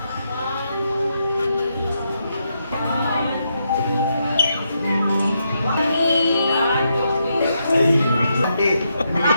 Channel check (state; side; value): inverted; both; correlation -0.80